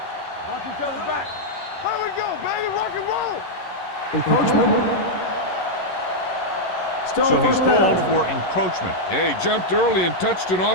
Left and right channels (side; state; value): right; late; 11 ms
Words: Watch each other's back. Here we go, baby. Rock and roll. So he's called for encroachment. Yeah, he jumped early and touched an